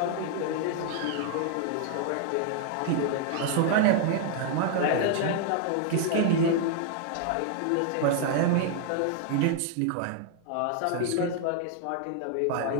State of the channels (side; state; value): both; different; correlation 0.00